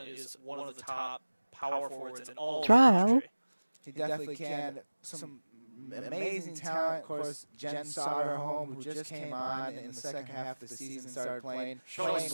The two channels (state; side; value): inverted; both; correlation -1.00